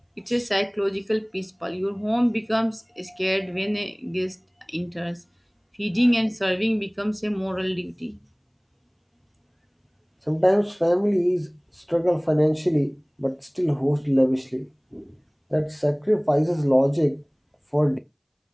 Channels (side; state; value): both; identical; correlation 1.00